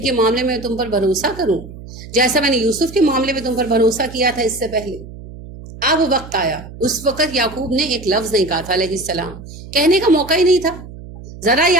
کے معاملے میں تم پر بھروسہ کروں جیسا میں نے یوسف کے معاملے میں تم پر بھروسہ کیا تھا اس سے پہلے۔ اب وقت آیا، اس وقت یعقوب نے ایک لفظ نہیں کہا تھا علیہ السلام، کہنے کا موقع ہی نہیں تھا، ذرا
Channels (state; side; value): noise; right; hum, 15 dB below the sound